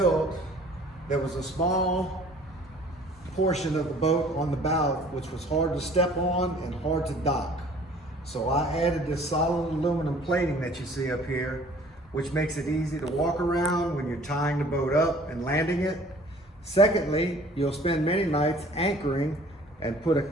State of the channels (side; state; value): both; normal; correlation 0.52